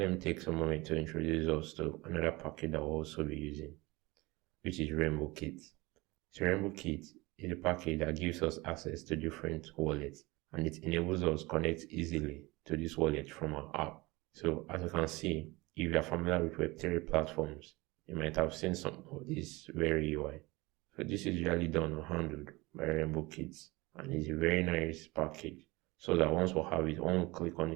me take some moment to introduce us to another package that we'll also be using, which is Rainbow Kit. So Rainbow Kit is a package that gives us access to different wallets and it enables us to connect easily to this wallet from our app. So as you can see, if you are familiar with Web3 platforms, you might have seen some of this very UI. So this is usually done or handled by Rainbow Kits and it's a very nice package. So that once we have it, one click on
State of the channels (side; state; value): left; quieter; 22.7 dB